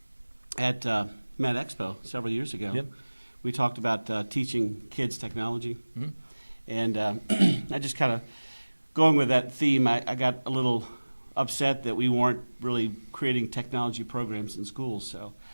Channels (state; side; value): inverted; both; correlation -1.00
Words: at Met Expo several years ago, we talked about teaching kids technology. Mm-hmm. And I just kind of, going with that theme, I got a little upset that we weren't really creating technology programs in schools. So